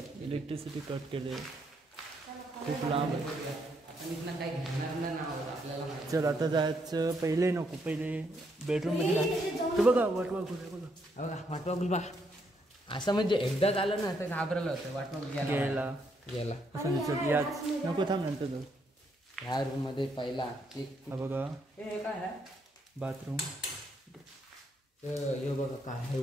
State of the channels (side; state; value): both; normal; correlation 0.75